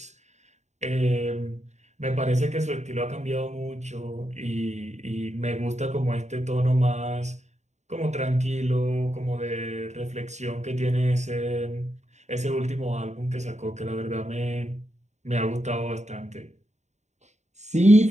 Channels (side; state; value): left; late; 0.33 ms